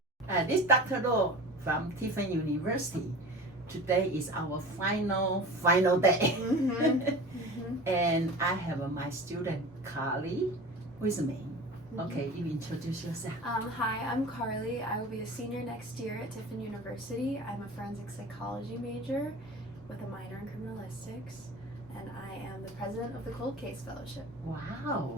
This is Dr. Law from Tiffin University. Today is our final day. And I have my student Carly with me. Okay, you introduce yourself. Hi, I'm Carly. I will be a senior next year at Tiffin University. I'm a forensic psychology major with a minor in criminalistics, and I am the president of the Cold Case Fellowship.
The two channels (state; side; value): normal; both; correlation 0.36